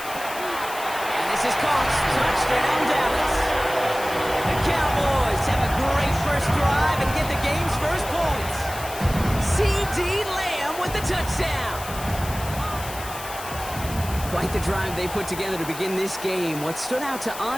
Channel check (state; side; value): noise; left; hiss, 12 dB below the sound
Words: And this is caught. Touchdown, Dallas. The Cowboys have a great first drive and get the game's first points. C.D. Lamb with the touchdown. Quite the drive they put together to begin this game. What stood out to